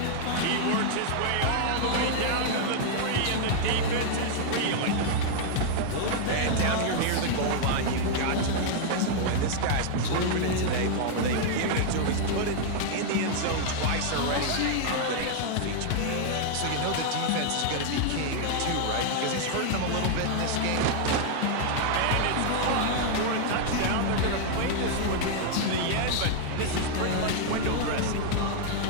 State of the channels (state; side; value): different; both; correlation -0.01